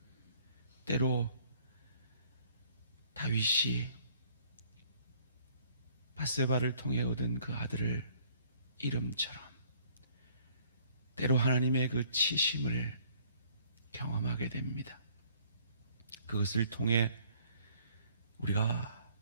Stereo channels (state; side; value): inverted; both; correlation -0.60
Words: 때로 다윗이 밧세바를 통해 얻은 그 아들을 이름처럼 때로 하나님의 그 치심을 경험하게 됩니다. 그것을 통해 우리가